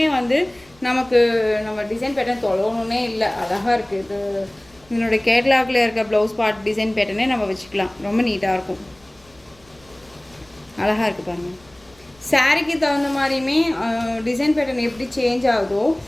வந்து நமக்கு நம்ம டிசைன் பேட்டர்ன் தொலைவணுன்னே இல்லை, அழகாக இருக்குது. இது இதனுடைய கேட்லாகில் இருக்க ப்ளவுஸ் பார்ட் டிசைன் பேட்டர்னே நம்ம வச்சுக்கலாம். ரொம்ப நீட்டாக இருக்கும், அழகாக இருக்குது பாருங்கள். சாரீக்கு தகுந்த மாதிரியுமே டிசைன் பேட்டர்ன் எப்படி சேஞ்ச் ஆகுதோ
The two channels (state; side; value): noise; left; rumble, 29 dB below the sound